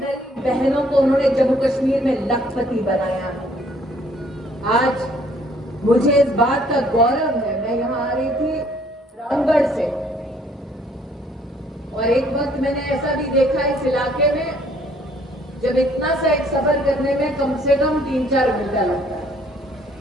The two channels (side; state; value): both; normal; correlation 0.62